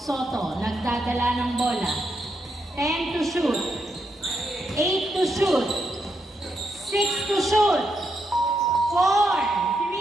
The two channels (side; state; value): both; normal; correlation 0.81